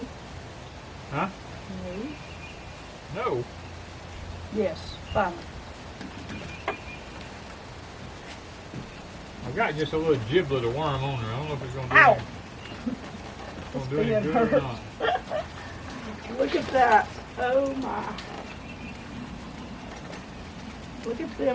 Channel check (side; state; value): both; identical; correlation 1.00